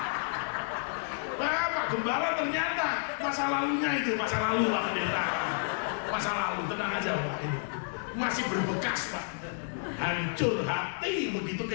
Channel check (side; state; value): right; silent; digital silence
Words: Pak Gembala ternyata masa lalunya itu masa lalu Pak Pendeta. Masa lalu, tenang aja Pak ini. Masih berbekas Pak. Hancur hati begitu